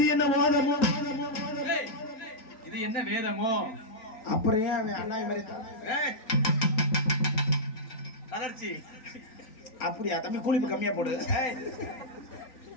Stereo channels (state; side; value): late; right; 3.9 ms